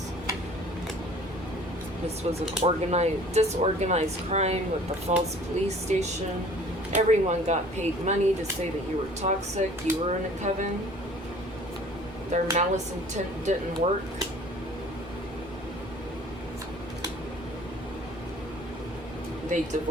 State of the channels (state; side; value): normal; both; correlation 0.50